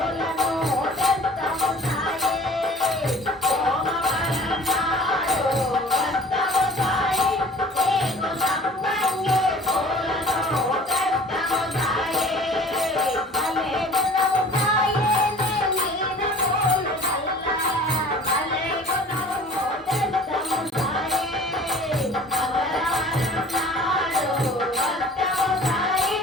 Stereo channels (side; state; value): both; normal; correlation 0.47